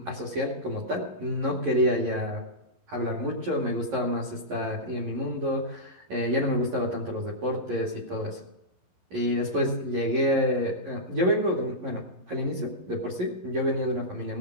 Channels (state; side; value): late; left; 11 ms